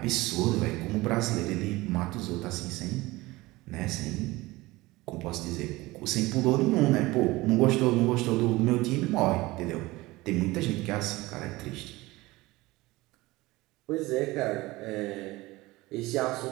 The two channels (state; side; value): quieter; left; 20.2 dB